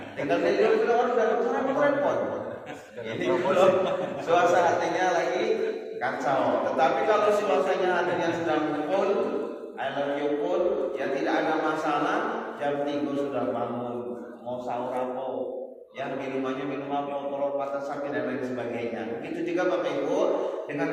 Tinggal dia keluar dari sana repot. Ini belum suasananya lagi kacau. Tetapi kalau suasananya hatinya sedang full, I love you full, ya tidak ada masalah. Jam 3 sudah bangun, mau sahur apa, yang minumannya minum apa, kalau patah sakit dan lain sebagainya. Begitu juga Bapak Ibu,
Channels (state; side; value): identical; both; correlation 1.00